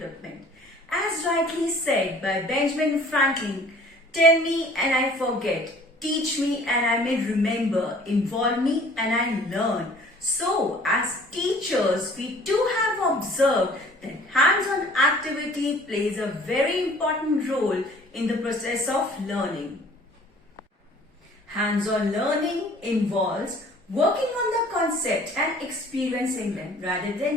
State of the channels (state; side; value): normal; both; correlation 0.52